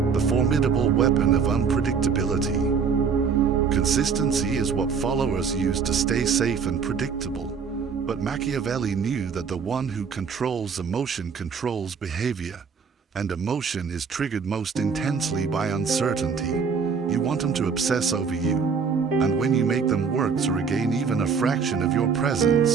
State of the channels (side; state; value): left; quieter; 5.9 dB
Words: the formidable weapon of unpredictability. Consistency is what followers use to stay safe and predictable, but Machiavelli knew that the one who controls emotion controls behavior, and emotion is triggered most intensely by uncertainty. You want them to obsess over you, and when you make them work to regain even a fraction of your